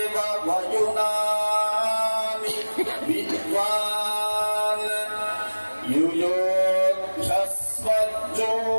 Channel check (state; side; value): inverted; both; correlation -1.00